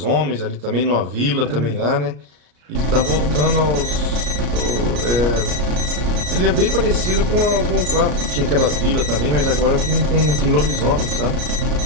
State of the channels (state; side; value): late; left; 34 ms